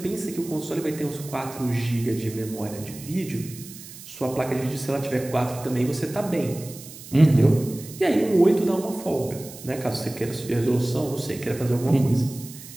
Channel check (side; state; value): right; noise; hiss, 16 dB below the sound